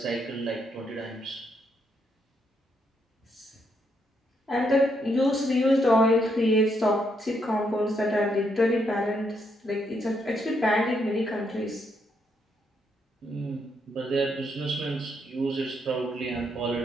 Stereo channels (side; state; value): both; normal; correlation 0.76